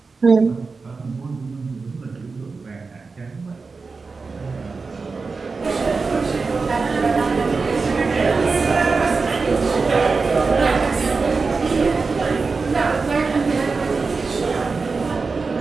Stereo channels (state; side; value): quieter; left; 4.4 dB